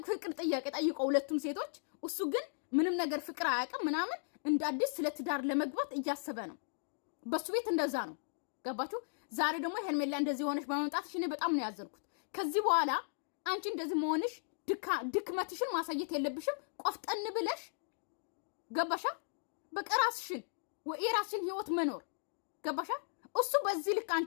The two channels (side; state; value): right; silent; digital silence